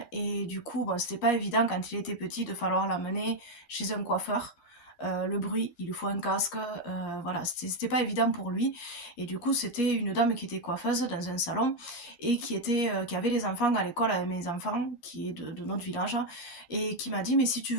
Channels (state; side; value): late; right; 11 ms